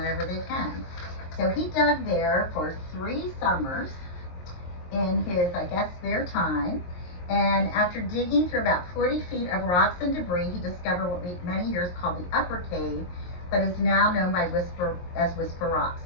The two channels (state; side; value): late; right; 23 ms